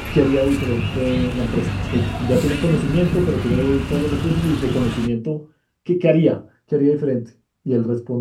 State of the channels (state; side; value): identical; both; correlation 1.00